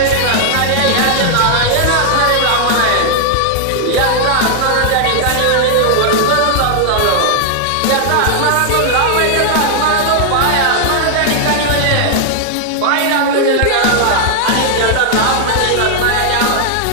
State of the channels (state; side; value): different; both; correlation 0.00